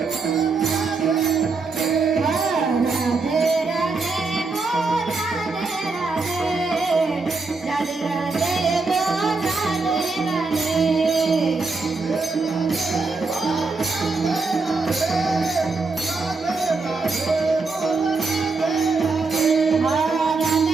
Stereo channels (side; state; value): left; quieter; 4.0 dB